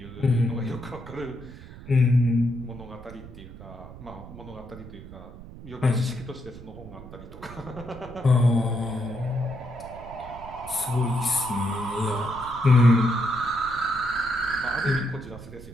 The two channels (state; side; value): noise; right; rumble, 15 dB below the sound